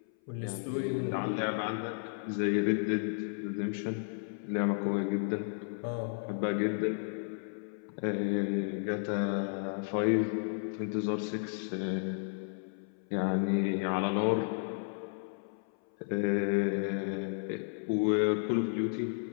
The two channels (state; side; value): silent; right; 56 dB below the other